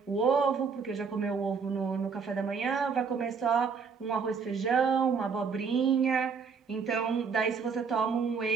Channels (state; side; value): quieter; left; 5.7 dB